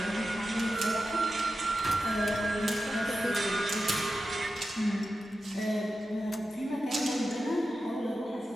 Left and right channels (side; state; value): both; normal; correlation 0.91